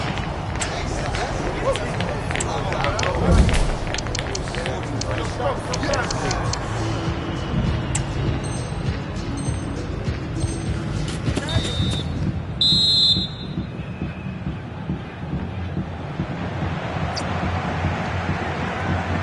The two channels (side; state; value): both; identical; correlation 1.00